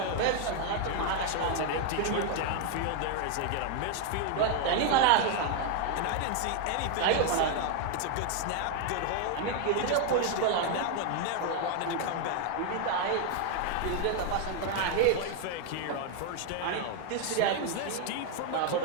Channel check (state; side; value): different; both; correlation 0.01